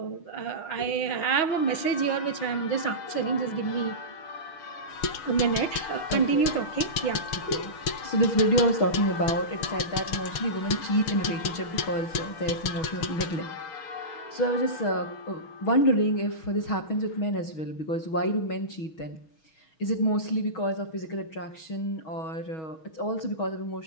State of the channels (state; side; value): late; right; 6.3 ms